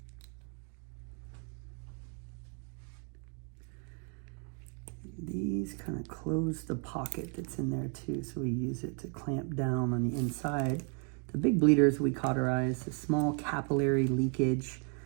These kind of close the pocket that's in there too, so we use it to clamp down on the inside. The big bleeders we cauterize, the small capillary leakage,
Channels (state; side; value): quieter; left; 39.5 dB